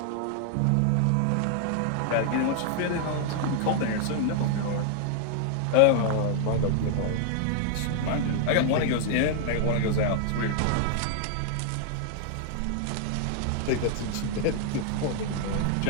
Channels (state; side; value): different; both; correlation 0.00